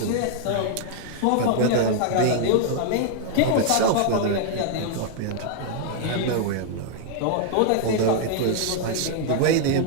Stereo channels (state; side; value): different; both; correlation -0.01